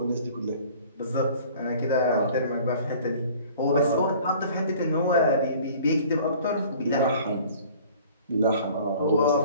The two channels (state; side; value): inverted; both; correlation -0.50